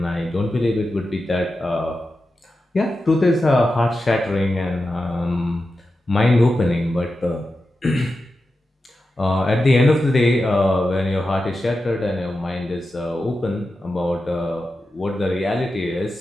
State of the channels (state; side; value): normal; both; correlation 0.91